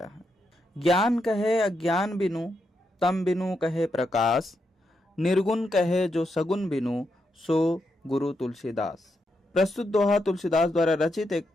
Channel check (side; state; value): both; normal; correlation 0.83